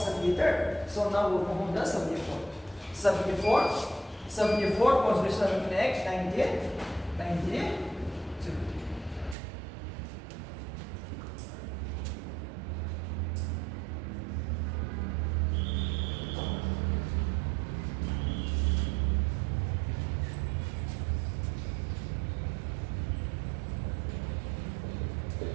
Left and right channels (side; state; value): left; drops out; at 9.3 s